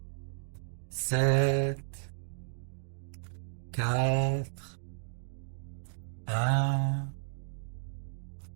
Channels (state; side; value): silent; left; digital silence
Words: 7, 4, 1,